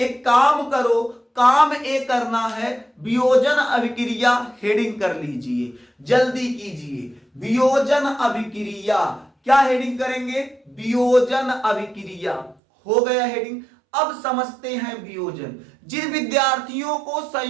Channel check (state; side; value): drops out; left; at 12.6 s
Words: काम करो, काम ए करना है, वियोजन अभिक्रिया हेडिंग कर लीजिए, जल्दी कीजिए। वियोजन अभिक्रिया क्या हेडिंग करेंगे? वियोजन अभिक्रिया। हो गया हेडिंग। अब समझते हैं वियोजन। जिन विद्यार्थियों को